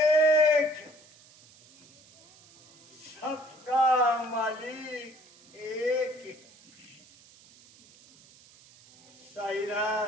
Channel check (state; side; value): noise; right; hiss, 26 dB below the sound